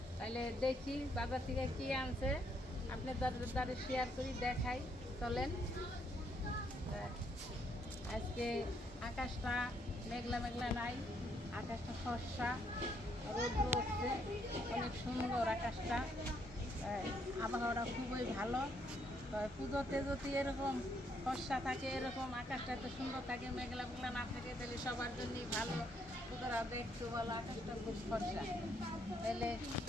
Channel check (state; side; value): normal; both; correlation 0.72